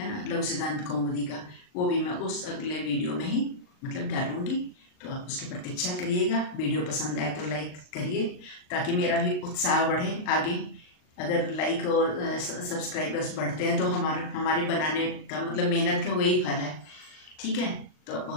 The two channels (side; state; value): right; late; 39 ms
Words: ना, लघु सिद्धांत कौमुदी का, वो भी मैं उस अगले वीडियो में ही मतलब डालूंगी। तो आप उसकी प्रतीक्षा करिएगा। वीडियो पसंद आए तो लाइक करिए ताकि मेरा भी उत्साह बढ़े आगे। अगर लाइक और सब्सक्राइबर्स बढ़ते हैं तो हमारे बनाने का मतलब मेहनत का वही फल है। ठीक है, तो